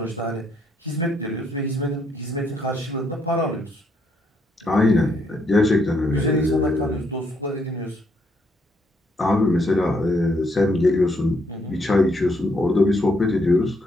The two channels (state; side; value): normal; both; correlation 0.73